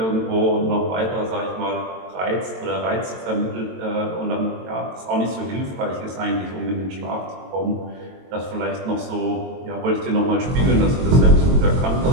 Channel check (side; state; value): left; late; 22 ms